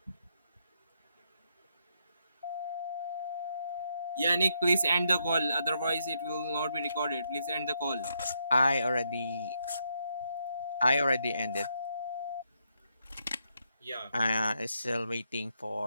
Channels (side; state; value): both; inverted; correlation -0.78